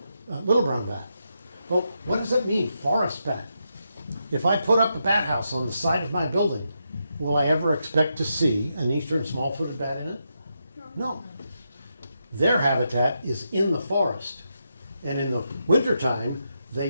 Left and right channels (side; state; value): both; inverted; correlation -0.84